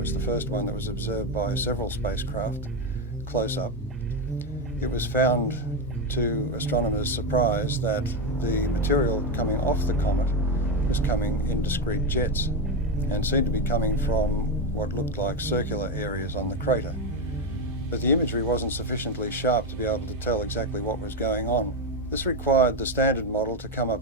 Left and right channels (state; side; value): normal; both; correlation 0.11